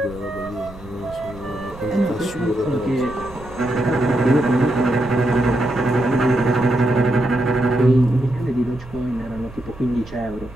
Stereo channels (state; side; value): noise; right; rumble, 18 dB below the sound